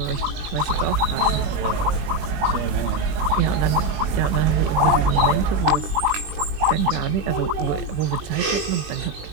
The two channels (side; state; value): left; late; 20 ms